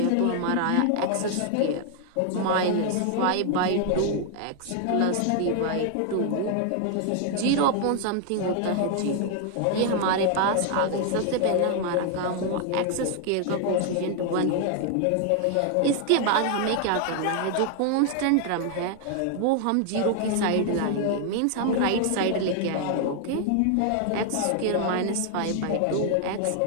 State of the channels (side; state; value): both; different; correlation 0.00